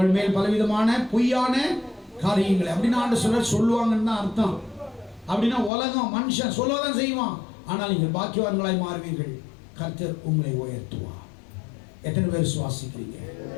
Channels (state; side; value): drops out; right; at 5.7 s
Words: மேல் பலவிதமான பொய்யான காரியங்களை அப்படின்னா ஆண்டவர் சொல்லுவாங்கன்னு தான் அர்த்தம். அப்படின்னா உலகம் மனுஷன் சொல்லதான் செய்வான், ஆனால் நீங்கள் பாக்கியவான்களாய் மாறுவீர்கள், கர்த்தர் உங்களை உயர்த்துவார். எத்தனை பேர் விசுவாசிக்கிறீங்க?